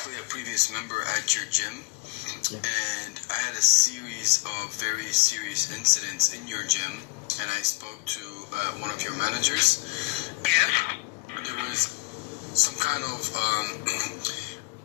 a previous member at your gym, and I had a series of very serious incidents in your gym, and I spoke to one of your managers. Yes. There was some kind of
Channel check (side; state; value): right; quieter; 24.4 dB